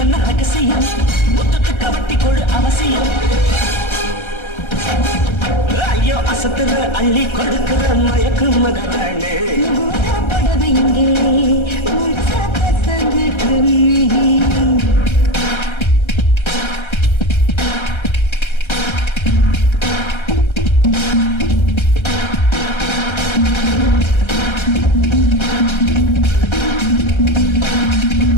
என்ன ரகசியம் முத்தத்துக்கு வட்டி கொடு அவசியம் ஐயோ அசத்துற அள்ளி கொடுக்கிற மயக்கும் மகரானே முகூர்த்த புடவையிலே முழுசா கசங்கிட்டு நீ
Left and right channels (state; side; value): late; right; 1.3 ms